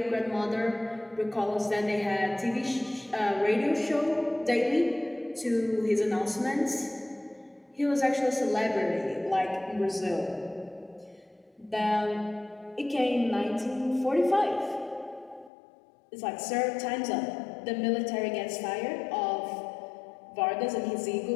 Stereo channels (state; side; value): drops out; right; at 15.5 s